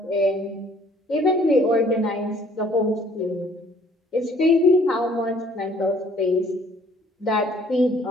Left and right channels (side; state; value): both; normal; correlation 0.58